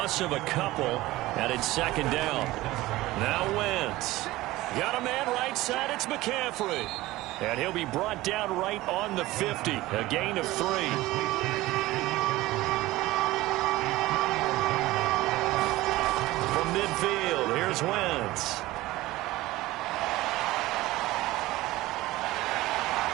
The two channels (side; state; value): left; quieter; 17.9 dB